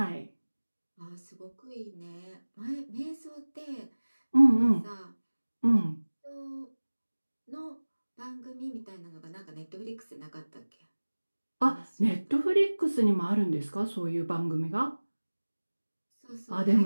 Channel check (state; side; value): inverted; both; correlation -1.00